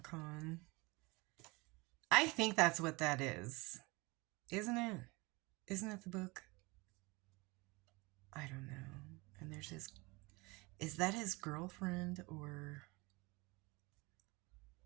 I think that's what that is. Isn't it? Isn't it the book? I don't know. And there's his... Is that his girlfriend or...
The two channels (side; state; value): left; quieter; 25.1 dB